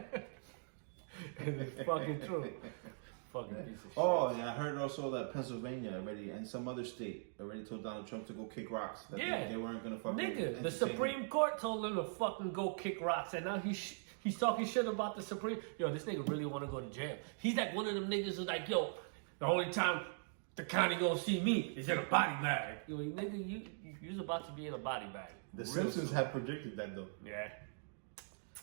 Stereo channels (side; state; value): left; silent; digital silence